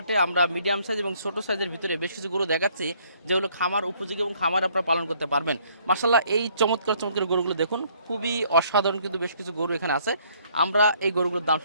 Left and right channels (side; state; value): both; inverted; correlation -0.64